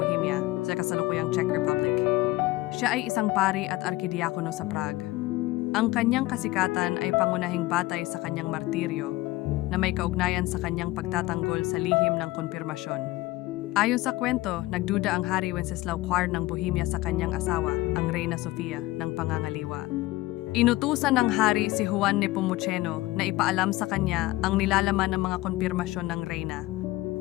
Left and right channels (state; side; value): quieter; right; 18.8 dB